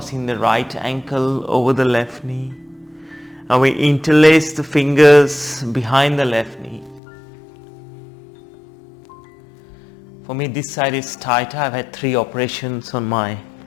the right ankle over the left knee. And we interlace the fingers behind the left knee. For me, this side is tighter. I've had 3 operations on my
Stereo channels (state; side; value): drops out; right; at 7.0 s